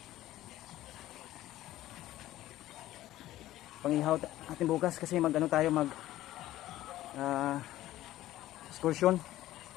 Pang-ihaw natin bukas kasi mag-ano tayo, mag excursion.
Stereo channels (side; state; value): right; quieter; 14.9 dB